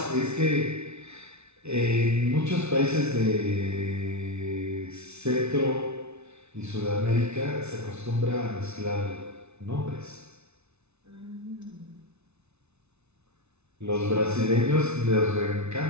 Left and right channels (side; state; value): left; late; 0.81 ms